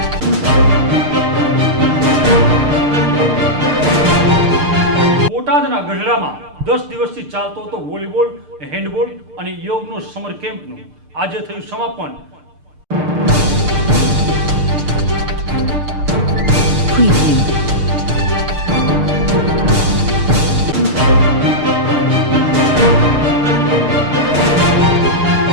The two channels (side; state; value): left; late; 6.7 ms